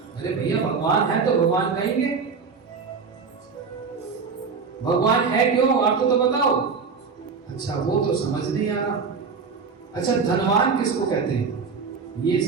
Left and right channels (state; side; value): quieter; left; 5.3 dB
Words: अरे भैया भगवान है तो भगवान कहेंगे, भगवान है क्यों, अर्थ तो बताओ। अच्छा वो तो समझ नहीं आ रहा। अच्छा धनवान किसको कहते हैं? ये